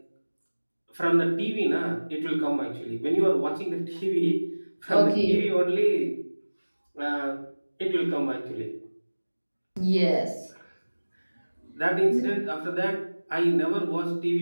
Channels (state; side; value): inverted; both; correlation -1.00